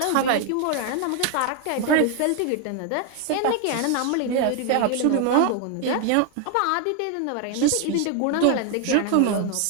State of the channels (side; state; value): both; different; correlation 0.01